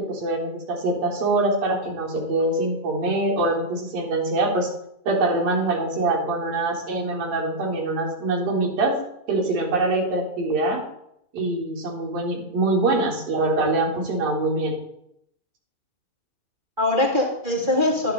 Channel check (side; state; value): left; late; 2.4 ms